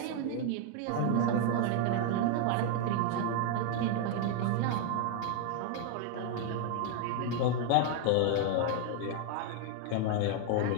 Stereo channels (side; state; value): both; different; correlation 0.00